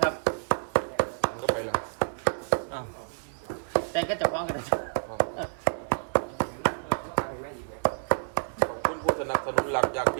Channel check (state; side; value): silent; left; 59 dB below the other